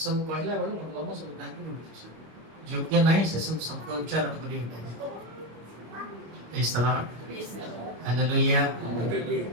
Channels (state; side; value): late; left; 26 ms